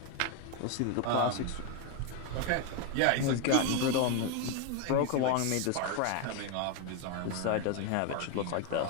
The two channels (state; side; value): different; both; correlation 0.02